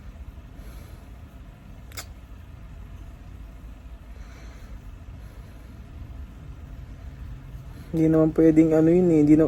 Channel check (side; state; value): both; identical; correlation 1.00